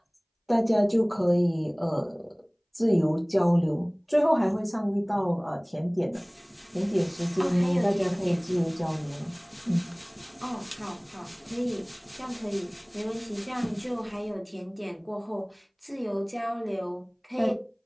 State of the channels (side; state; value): both; identical; correlation 1.00